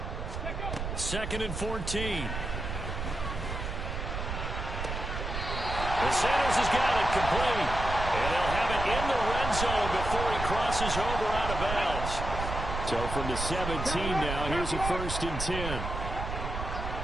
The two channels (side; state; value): right; noise; rumble, 5 dB below the sound